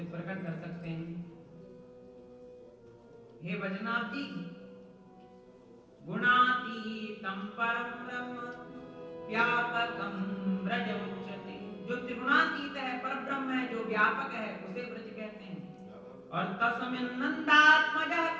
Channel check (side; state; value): both; identical; correlation 1.00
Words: प्रकट कर सकते हैं। हे वैजनाथ जी, गुणातीतं परम ब्रह्म व्यापकं ब्रज उच्यते, जो त्रिगुणातीत है, परब्रह्म है, जो व्यापक है, उसे ब्रज कहते हैं। और तस्मिन् नंदात्मजः